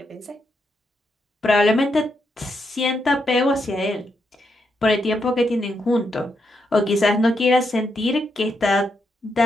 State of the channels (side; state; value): both; normal; correlation 0.81